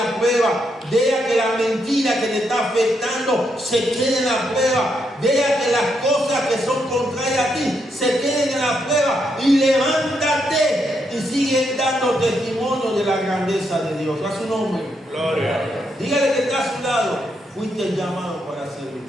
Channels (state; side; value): normal; both; correlation 0.79